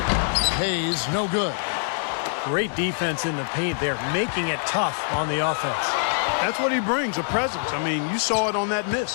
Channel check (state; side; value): silent; right; digital silence